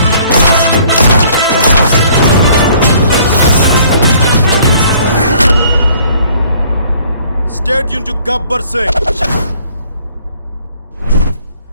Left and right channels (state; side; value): inverted; both; correlation -0.58